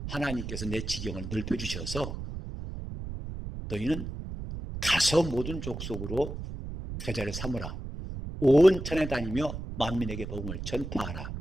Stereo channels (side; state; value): right; noise; rumble, 7 dB below the sound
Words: 하나님께서 내 지경을 넓혀주셔서 너희는 가서 모든 족속으로 제자를 삼으라. 온 천에 다니며 만민에게 복음을 전파하라.